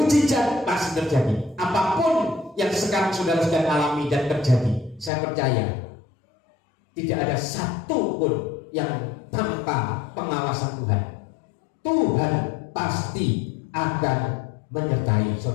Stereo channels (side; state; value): right; drops out; at 5.1 s